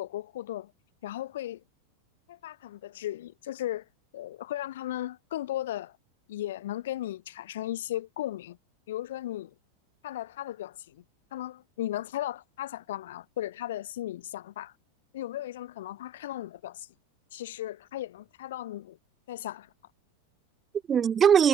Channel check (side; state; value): both; normal; correlation 0.30